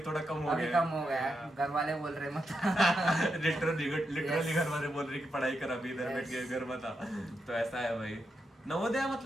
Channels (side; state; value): both; normal; correlation 0.85